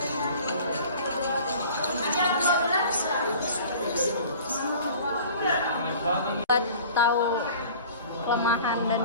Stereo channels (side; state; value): both; inverted; correlation -0.45